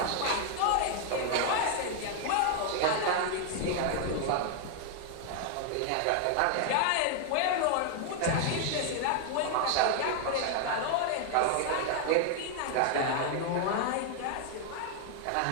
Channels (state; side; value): different; both; correlation 0.00